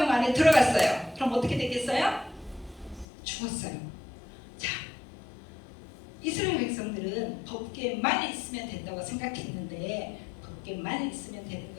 안에 들어갔어요. 그럼 어떻게 되겠어요? 죽었어요. 자, 이스라엘 백성들은 법궤만 있으면 된다고 생각했는데 법궤만 있으면 되는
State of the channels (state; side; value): drops out; right; at 3.1 s